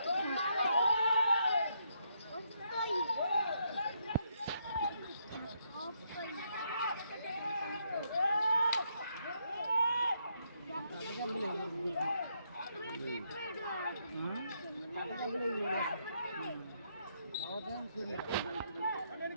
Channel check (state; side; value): inverted; both; correlation -0.76